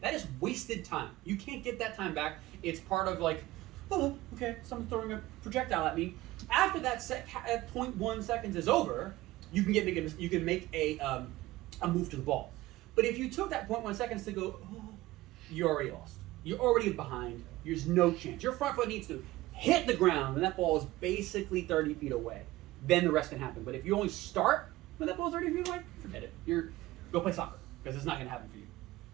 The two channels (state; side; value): quieter; left; 17.7 dB